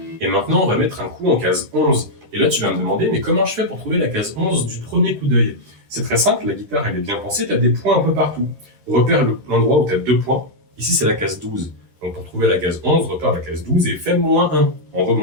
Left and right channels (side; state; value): left; late; 13 ms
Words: Et maintenant, on va mettre un coup en case 11. Et là, tu vas me demander, mais comment je fais pour trouver la case 11 du premier coup d'œil? C'est très simple, la guitare, elle est bien pensée, tu as des points un peu partout. Repère l'endroit où tu as 2 points. Ici, c'est la case 12. Donc, pour trouver la case 11, repère la case 12 et fais -1 en